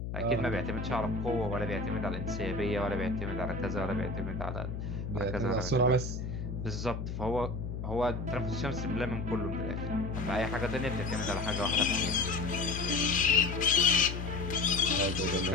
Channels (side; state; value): left; noise; hum, 5 dB below the sound